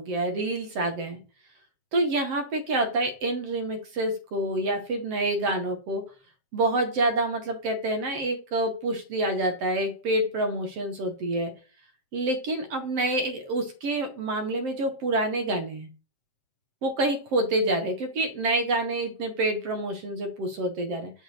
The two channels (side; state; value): left; late; 7.6 ms